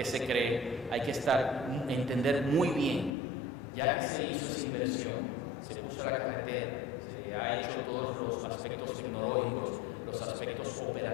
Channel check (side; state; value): right; drops out; at 3.1 s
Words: se cree hay que entender muy bien, ya que se hizo esa inversión, se puso la carretera, se ha hecho todos los aspectos tecnológicos, los aspectos